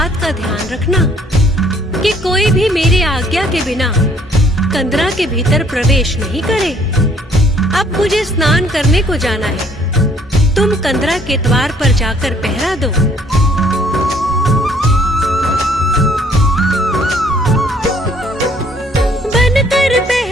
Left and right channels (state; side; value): normal; both; correlation 0.62